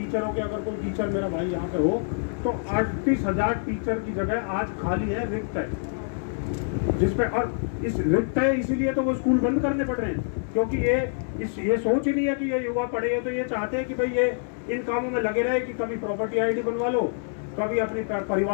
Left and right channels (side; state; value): right; silent; digital silence